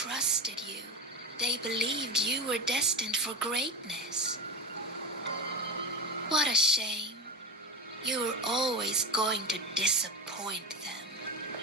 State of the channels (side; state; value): both; normal; correlation 0.20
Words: you. They believed you were destined for greatness. What a shame. You were always going to disappoint them.